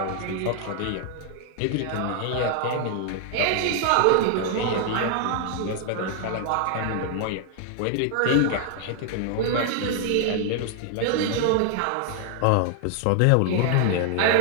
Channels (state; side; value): different; both; correlation 0.00